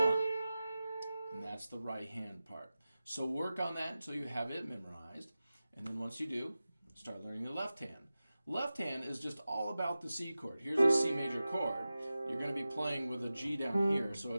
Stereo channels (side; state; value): both; inverted; correlation -0.95